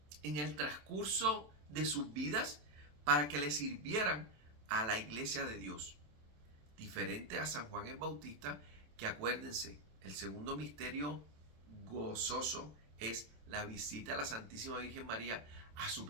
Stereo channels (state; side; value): late; left; 27 ms